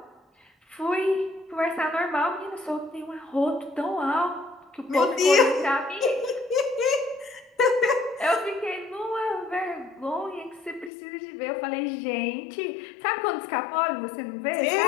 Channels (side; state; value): right; drops out; at 10.9 s